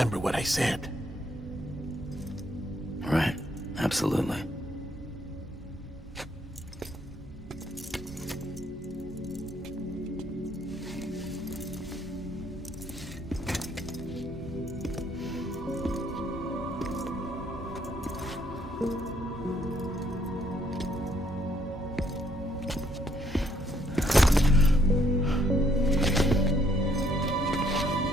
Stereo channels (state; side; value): normal; both; correlation 0.69